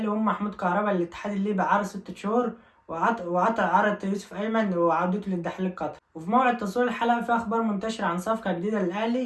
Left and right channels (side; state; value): both; identical; correlation 1.00